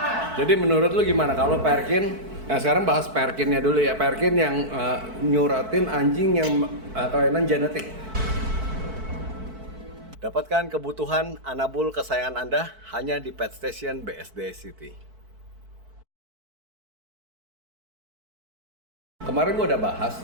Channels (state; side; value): late; left; 4.6 ms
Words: Jadi menurut lu gimana kalau Perkin? Nah sekarang bahas Perkinnya dulu ya. Perkin yang nyuratin anjing yang kelainan genetik. Dapatkan kebutuhan anabul kesayangan Anda hanya di Pet Station BSD City. Kemarin gue udah bahas